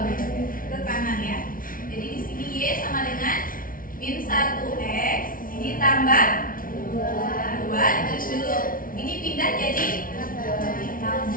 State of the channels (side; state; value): right; late; 0.40 ms